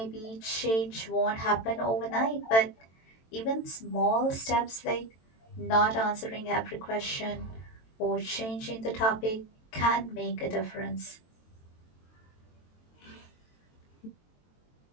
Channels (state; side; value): late; right; 22 ms